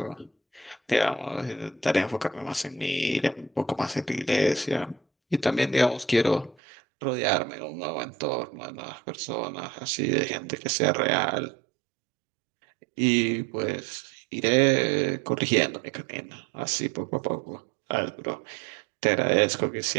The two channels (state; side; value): drops out; left; at 6.6 s